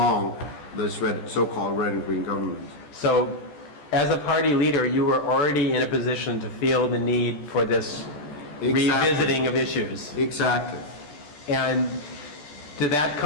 this so-called red and green government. So, as a party leader, you were already in a position to feel the need for this revisiting of issues. Exactly. And did that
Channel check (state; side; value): late; right; 14 ms